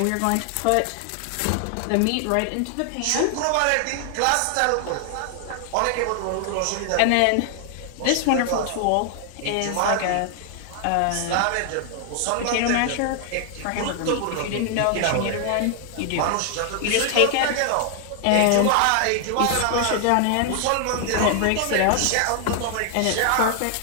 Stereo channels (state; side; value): different; both; correlation 0.00